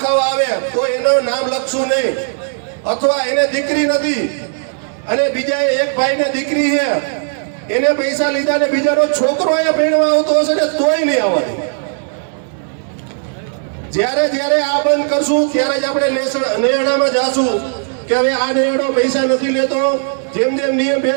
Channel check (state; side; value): silent; left; digital silence